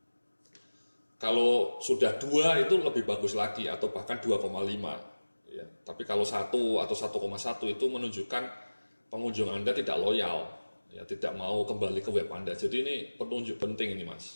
Kalau sudah 2 itu lebih bagus lagi, atau bahkan 2,5. Ya, tapi kalau 1 atau 1,1 itu menunjukkan pengunjung Anda tidak loyal, ya, tidak mau kembali ke web Anda. Jadi ini penunjuk penting ini,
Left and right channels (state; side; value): inverted; both; correlation -1.00